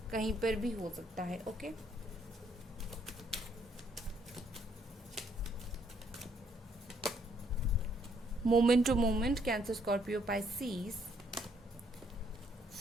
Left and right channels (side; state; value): both; normal; correlation 0.69